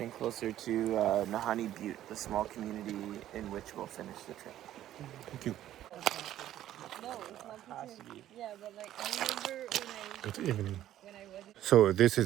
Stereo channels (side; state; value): left; quieter; 12.6 dB